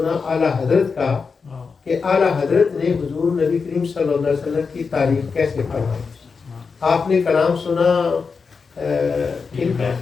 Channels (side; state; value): right; quieter; 5.1 dB